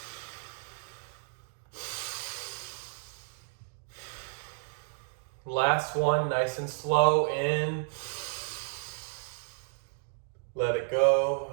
Last one, nice and slow, in. Let it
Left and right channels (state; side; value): silent; left; digital silence